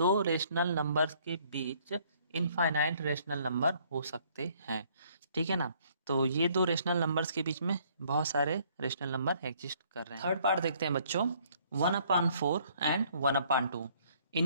रेशनल नंबर्स के बीच इनफाइनाइट रेशनल नंबर हो सकते हैं, ठीक है ना। तो ये दो रेशनल नंबर्स के बीच में बहुत सारे रेशनल नंबर एग्जिस्ट कर रहे हैं। थर्ड पार्ट देखते हैं बच्चों, 1/4 एंड 1/2।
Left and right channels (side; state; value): both; inverted; correlation -0.63